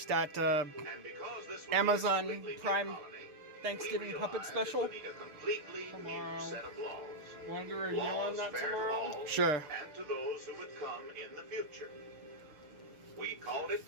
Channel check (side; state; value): left; late; 6.7 ms